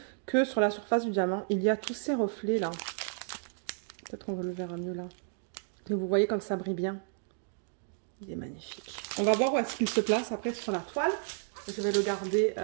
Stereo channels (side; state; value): left; silent; digital silence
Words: que sur la surface du diamant, il y a tous ces reflets-là. Peut-être qu'on le verra mieux là. Et vous voyez comme ça brille bien. Il est magnifique. On va voir où est-ce qu'il se place après sur la toile. Je vais le garder